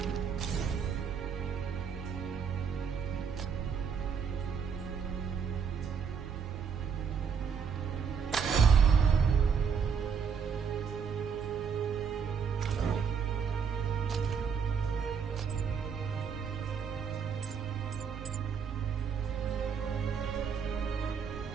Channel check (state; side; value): quieter; left; 6.5 dB